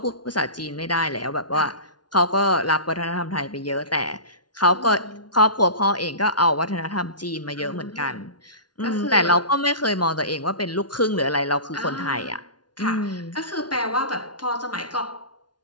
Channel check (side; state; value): right; late; 0.70 ms